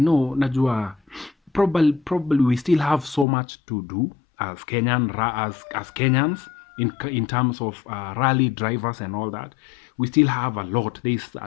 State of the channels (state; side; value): drops out; right; at 3.2 s